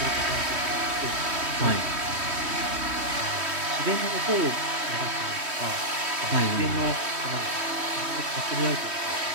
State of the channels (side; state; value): left; late; 3.1 ms